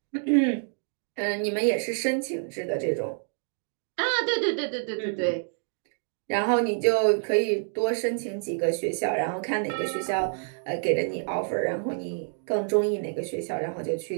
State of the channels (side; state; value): left; silent; digital silence